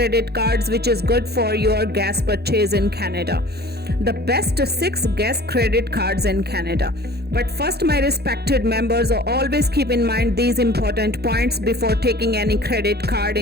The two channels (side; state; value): left; late; 0.47 ms